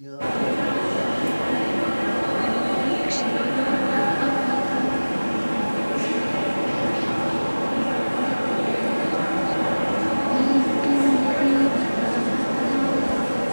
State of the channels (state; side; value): inverted; both; correlation -1.00